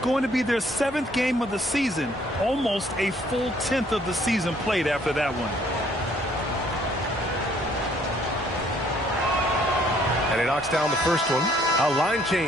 to be their 7th game of the season. Almost a full 10th of the season played after that one. And he knocks down the first one. A line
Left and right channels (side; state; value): both; normal; correlation 0.63